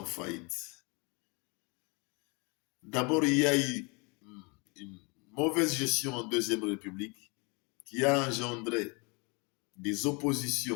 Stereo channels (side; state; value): right; quieter; 30.4 dB